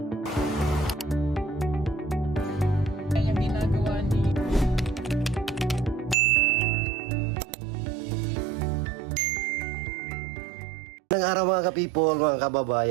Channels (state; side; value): drops out; left; at 6.2 s